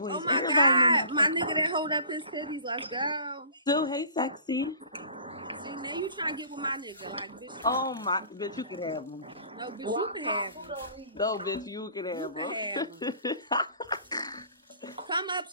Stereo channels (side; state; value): both; inverted; correlation -0.48